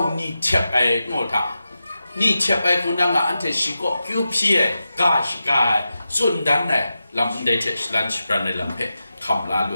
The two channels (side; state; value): both; inverted; correlation -0.91